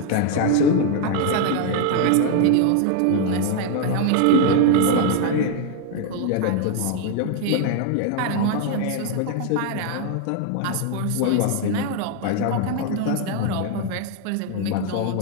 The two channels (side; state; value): both; different; correlation 0.00